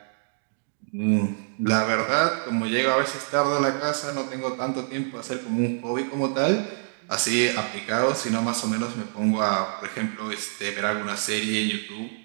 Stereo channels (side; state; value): left; silent; digital silence